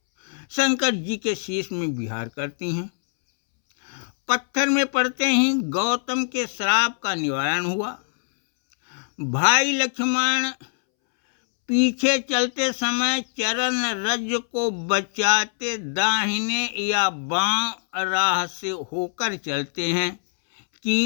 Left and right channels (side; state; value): right; silent; 63 dB below the other